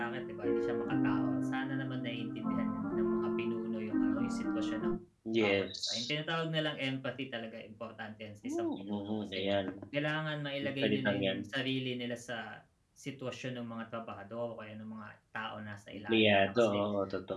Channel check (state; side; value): identical; both; correlation 1.00